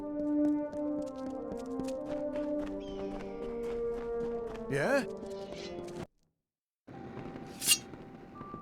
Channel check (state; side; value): identical; both; correlation 1.00